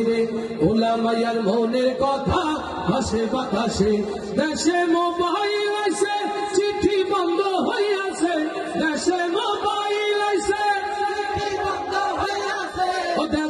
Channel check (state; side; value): identical; both; correlation 1.00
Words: পোলা মাইয়ার মনের কথা ভাসে বাতাসে। দেশে মোবাইল আইছে, চিঠি বন্ধ হইয়াছে। দেশে মোবাইল আইছে, চিঠি বন্ধ হইয়াছে। ও